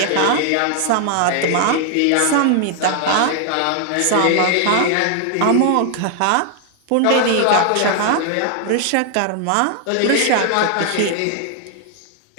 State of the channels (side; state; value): both; different; correlation 0.00